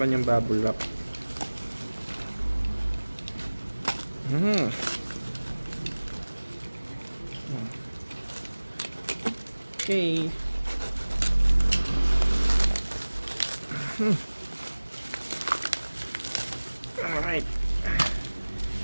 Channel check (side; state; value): both; inverted; correlation -1.00